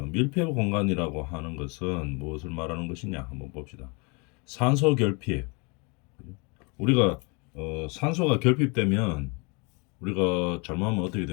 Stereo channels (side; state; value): right; quieter; 31.1 dB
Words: 밀폐 공간이라고 하는 것은 무엇을 말하는 것이냐 한번 봅시다. 산소 결핍. 우리가 산소가 결핍되면 우리가 잘못하면 어떻게